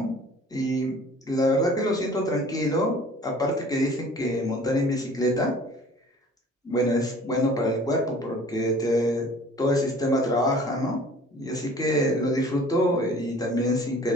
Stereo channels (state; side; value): normal; both; correlation 0.49